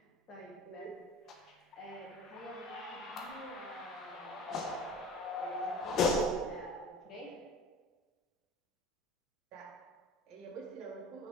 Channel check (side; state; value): both; normal; correlation 0.39